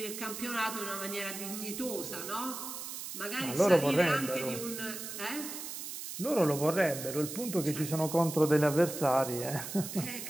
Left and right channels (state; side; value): noise; right; hiss, 8 dB below the sound